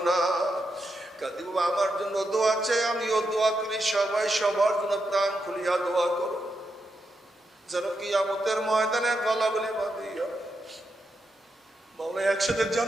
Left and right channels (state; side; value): normal; both; correlation 0.84